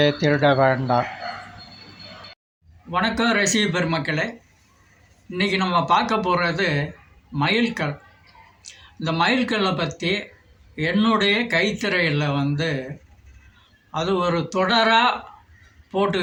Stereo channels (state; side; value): identical; both; correlation 1.00